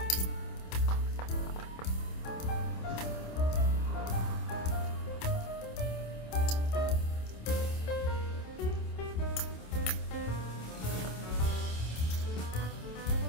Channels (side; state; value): right; late; 27 ms